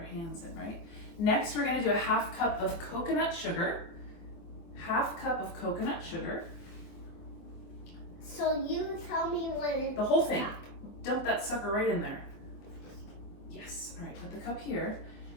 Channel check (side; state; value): right; late; 24 ms